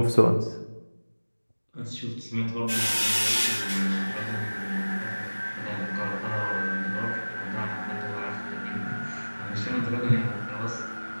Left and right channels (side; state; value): both; inverted; correlation -1.00